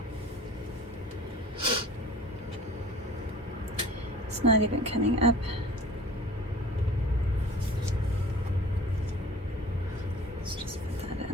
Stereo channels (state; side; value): normal; both; correlation 0.45